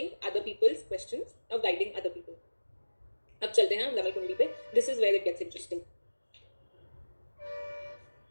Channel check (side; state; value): both; inverted; correlation -1.00